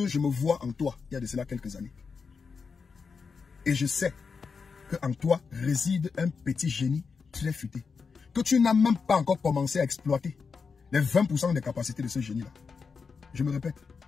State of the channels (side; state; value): right; quieter; 5.3 dB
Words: je me vois en toi il y a de cela quelques années. Et je sais qu'en toi réside un petit génie très futé, que tu n'as même pas encore commencé à exploiter les 20% des capacités de ce génie-là. Je me répète,